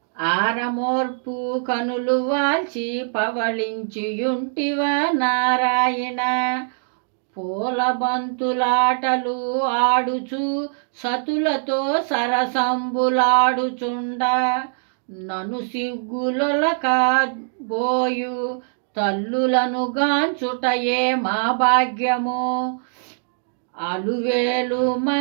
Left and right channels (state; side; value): silent; left; digital silence